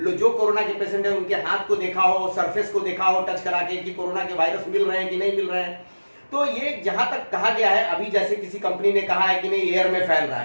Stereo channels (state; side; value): inverted; both; correlation -1.00